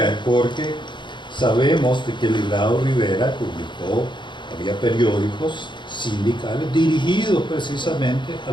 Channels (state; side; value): late; right; 0.23 ms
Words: porque sabemos de que el Librado Rivera publicó, había periódicos sindicales dirigidos precisamente a